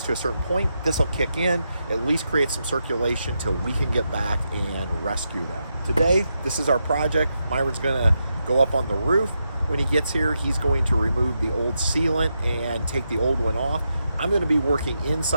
to a certain point, this will kick in, at least create some circulation till we can get back and rescue them. Today, this is our project. Myron's gonna go up on the roof. When he gets here, he's going to remove the old sealant and take the old one off. I'm going to be working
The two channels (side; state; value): both; inverted; correlation -0.85